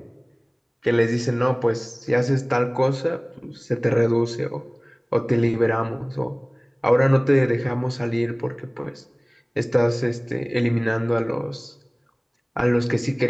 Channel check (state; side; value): identical; both; correlation 1.00